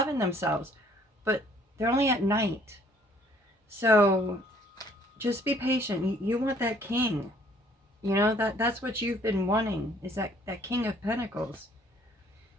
themselves, but they're only at night. So just be patient. You want that king. You know, that's what you've been wanting, is that King of Pentacles.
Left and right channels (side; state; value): both; normal; correlation 0.60